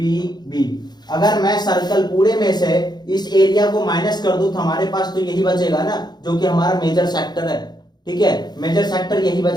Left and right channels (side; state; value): right; late; 0.20 ms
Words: B. अगर मैं सर्कल पूरे में से इस एरिया को माइनस कर दूं तो हमारे पास तो यही बचेगा ना, जो कि हमारा मेजर सेक्टर है, ठीक है, मेजर सेक्टर यही